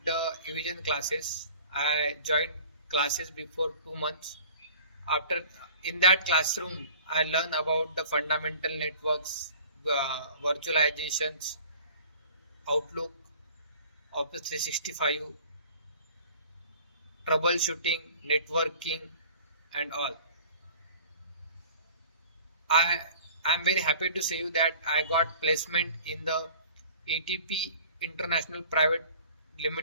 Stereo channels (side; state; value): both; inverted; correlation -0.47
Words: the Evision classes. I joined classes before 2 months. After in that classroom, I learned about the fundamental networks, virtualizations, Outlook, Office 365, troubleshooting, networking, and all. I am very happy to say you that I got placement in the ETP International Private